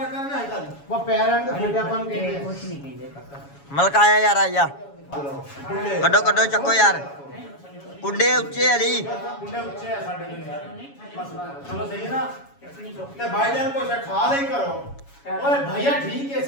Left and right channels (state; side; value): late; right; 7.2 ms